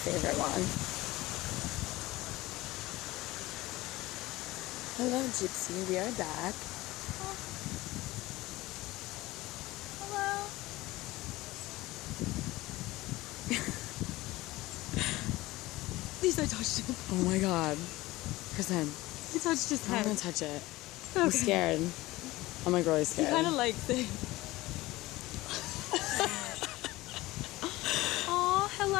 one. Hello, Gypsy. We are back. Oh. Hello. At least I touched him. Oh my god. Kristen. You touched his head. I'm gonna touch it. Okay. I'm scared. I'm like really scared. He kind of likes it. Aw,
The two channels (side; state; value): right; quieter; 19.0 dB